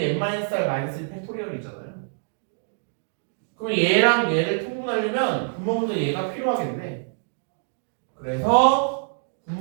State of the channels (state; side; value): silent; left; digital silence